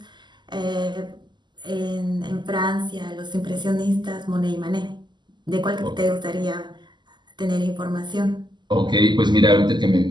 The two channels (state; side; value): late; left; 0.21 ms